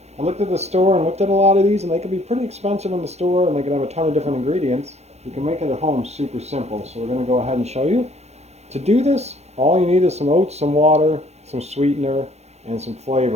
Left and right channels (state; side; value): late; left; 0.31 ms